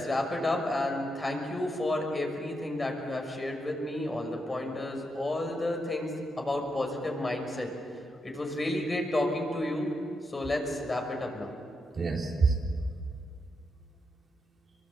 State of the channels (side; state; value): both; normal; correlation 0.83